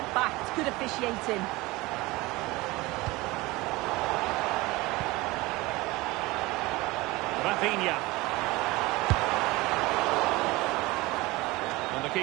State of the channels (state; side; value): quieter; left; 21.5 dB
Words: back. It's good officiating. Rafinha. And the